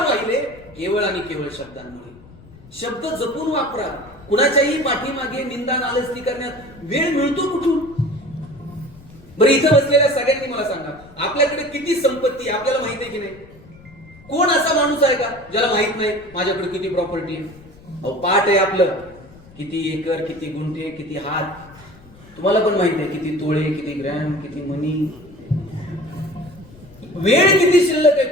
केवळ आणि केवळ शब्दांमुळे. शब्द जपून वापरा. कुणाच्याही पाठीमागे निंदा नालस्ती करण्यात वेळ मिळतो कुठून? बरं, इथं बसलेल्या सगळ्यांनी मला सांगा, आपल्याकडे किती संपत्ती आपल्याला माहिती आहे की नाही? कोण असा माणूस आहे का ज्याला माहित नाही माझ्याकडे किती प्रॉपर्टी आहे? अहो, पाठ आहे आपलं, किती एकर, किती गुंठे, किती हात. तुम्हाला पण माहिती आहे किती तोळे, किती ग्रॅम, किती मनी. वेळ किती शिल्लक आहे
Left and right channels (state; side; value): noise; left; rumble, 23 dB below the sound